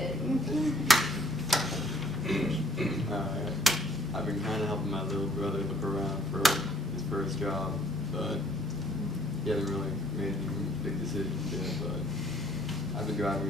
I've been kind of helping my little brother look around for his first job, but he hasn't really made any big decisions yet, but I've been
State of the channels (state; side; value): normal; both; correlation 0.61